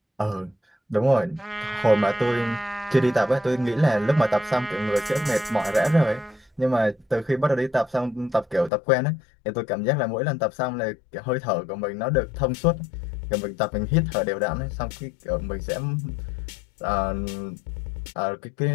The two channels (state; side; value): drops out; right; at 8.7 s